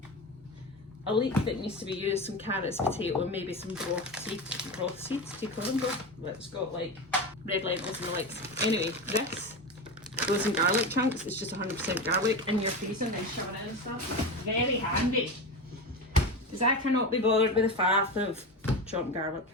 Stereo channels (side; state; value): both; normal; correlation 0.22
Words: a leek that needs to be used, some carrots, potato, and maybe some broth seeds, do you call them broth? It's got like red lentils and the likes. Anyway, this goes in garlic chunks. It's just 100% garlic in your freezer and then shove it in and stuff. Very handy, because I cannot be bothered with the faff of chopped garlic.